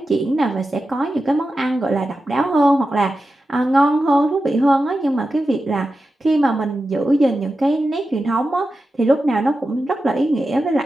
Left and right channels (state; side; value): normal; both; correlation 0.92